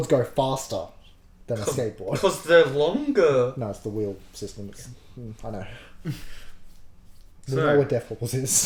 go faster than a skateboard. Because they're longer. No, it's the wheel system. I know. We So- know what death wobbles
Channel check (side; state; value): both; identical; correlation 1.00